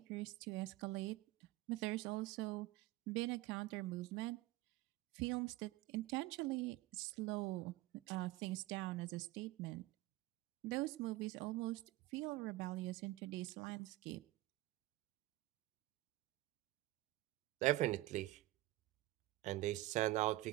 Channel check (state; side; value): quieter; left; 18.0 dB